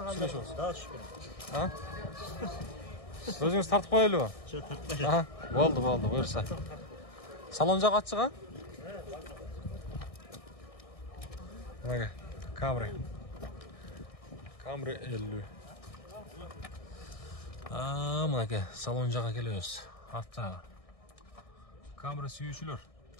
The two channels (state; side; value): late; right; 1.6 ms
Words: daha şükür. Ha? O'zingiz tartib qo'yaylikmi? Şu tartmayın. Ha, bo'ldi, buyursa. Salonja qatchiq ha? Mana Camry. Camry 50. Mana aka, salonjaga kelyapmiz. Hatta Camry suyuvchilar.